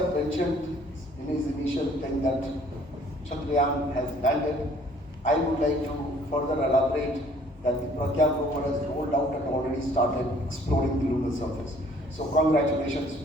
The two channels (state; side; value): normal; both; correlation 0.58